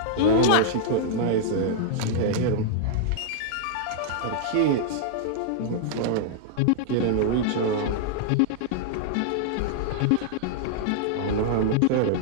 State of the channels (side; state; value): both; different; correlation -0.01